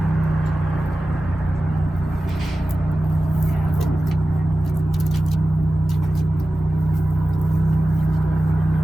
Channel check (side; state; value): both; normal; correlation 0.95